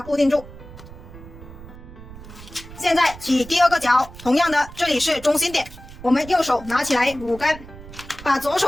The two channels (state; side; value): noise; right; rumble, 16 dB below the sound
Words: 固定住。现在起第2个角，同样的这里是中心点，我们右手拿起来5根，把左